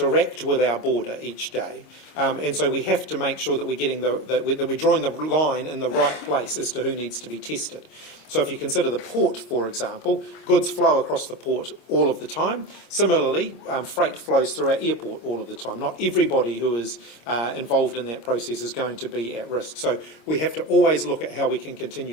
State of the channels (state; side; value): late; right; 26 ms